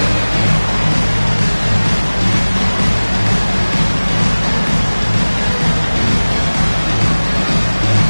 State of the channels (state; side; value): inverted; both; correlation -1.00